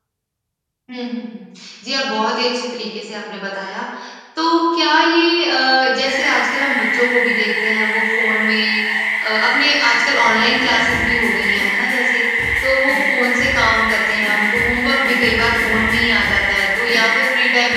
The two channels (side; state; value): both; identical; correlation 1.00